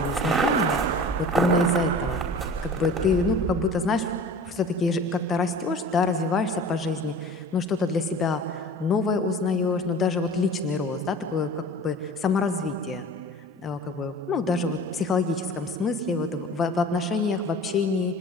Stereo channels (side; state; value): both; normal; correlation 0.41